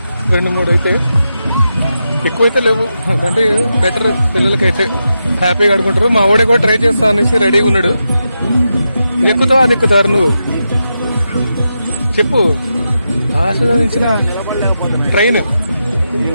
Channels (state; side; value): inverted; both; correlation -0.87